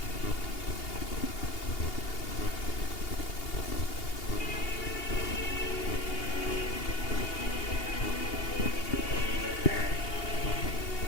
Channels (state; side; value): late; right; 2.8 ms